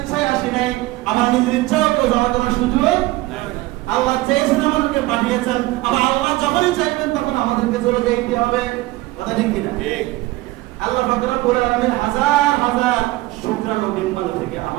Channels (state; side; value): quieter; left; 19.1 dB